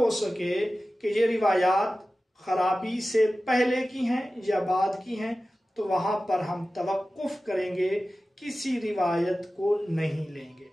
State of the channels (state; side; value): normal; both; correlation 0.95